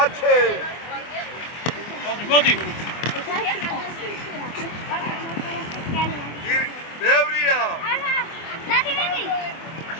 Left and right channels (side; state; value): right; late; 24 ms